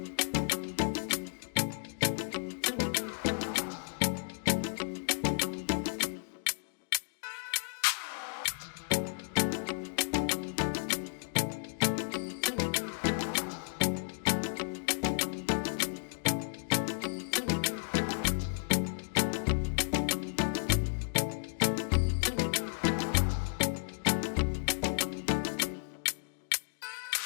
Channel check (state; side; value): silent; right; digital silence